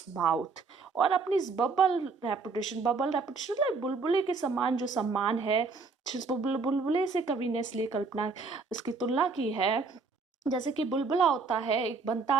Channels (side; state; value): left; quieter; 4.4 dB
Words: mouth, और अपनी इस बबल रेपुटेशन लाइक बुलबुले के समान जो सम्मान है, जिस बुलबुले से कवि ने इसलिए कल्पना इसकी तुलना की है, जैसे कि बुलबुला होता है, एक बनता